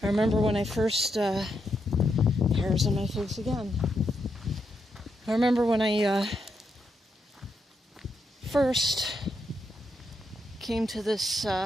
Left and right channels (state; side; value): normal; both; correlation 0.81